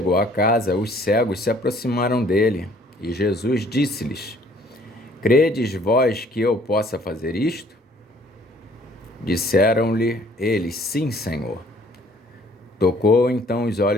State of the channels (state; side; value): normal; both; correlation 0.58